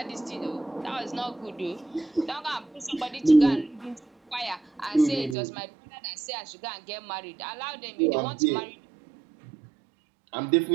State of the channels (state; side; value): drops out; left; at 5.4 s